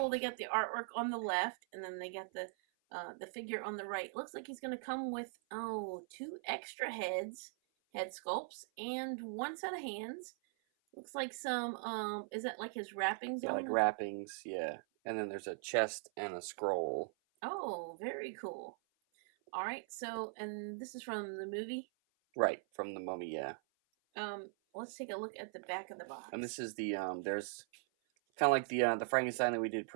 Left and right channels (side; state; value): left; silent; 51 dB below the other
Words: They got the artwork on the left, and then they got the figure on the right. Looks like he's going to come with, two extra head sculpts, and one set of hands. Looks like some, is that like his wrappings Yeah, on like them? wrappings, yeah. And then there's a chest and a scroll. Oh, very cool. All right, so, and this is from the movie. Right, from the Mummy, yeah. Let's take a look at the back of the box. And this is the, there's kind of like the Frankenstein that we did